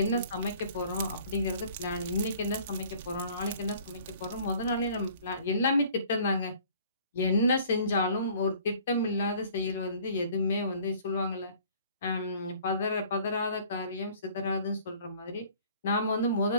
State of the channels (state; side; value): inverted; both; correlation -0.53